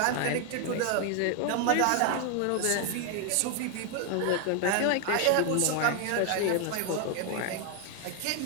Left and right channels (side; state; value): both; different; correlation 0.01